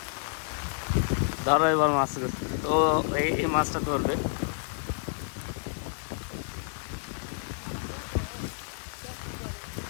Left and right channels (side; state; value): right; silent; digital silence